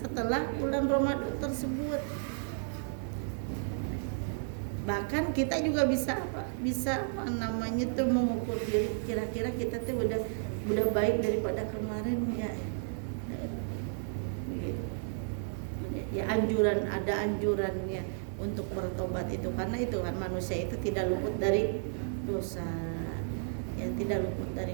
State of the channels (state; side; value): silent; left; digital silence